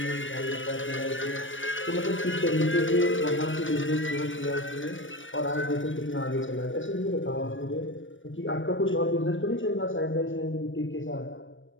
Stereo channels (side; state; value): right; late; 0.56 ms